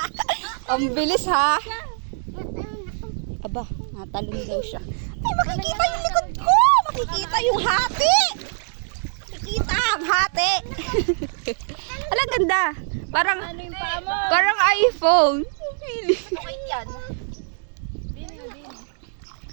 Ang bilis ha. Aba, Natalon daw siya. Ay, makikita yung likod ko! Makikita yung hati! Makikita ang hati! Alam, ganda. Parang, parang iPhone. Okay yan.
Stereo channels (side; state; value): left; silent; 63 dB below the other